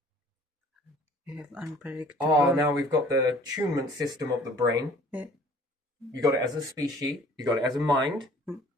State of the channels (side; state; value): both; normal; correlation 0.52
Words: You have unpredictable. Oh, now we've got the tunement system of the brain. Yeah. You got it as a species. You got it as a mind.